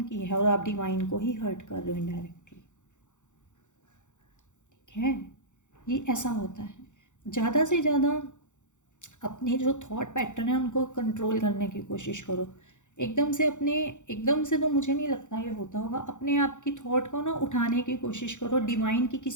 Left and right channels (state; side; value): late; right; 0.85 ms